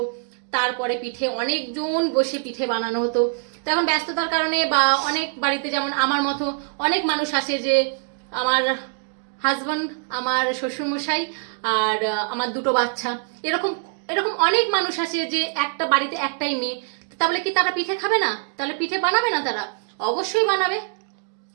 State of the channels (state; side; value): silent; left; 57 dB below the other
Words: তারপরে পিঠে অনেকজন বসে পিঠে বানানো হতো। তো এখন ব্যস্ততার কারণে বা অনেক বাড়িতে যেমন আমার মতো অনেক মানুষ আসে, যে আমার হাজব্যান্ড, আমার শ্বশুরমশাই আর আমার দুটো বাচ্চা, এরকম এরকম অনেক মানুষ আছে যে একটা বাড়িতে একটাই মেয়ে। তাহলে কি তারা পিঠে খাবে না? তাহলে পিঠে বানাবে না? তারা অবশ্যই বানাবে।